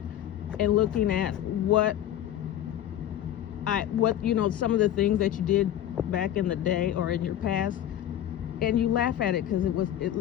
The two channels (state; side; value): quieter; right; 11.6 dB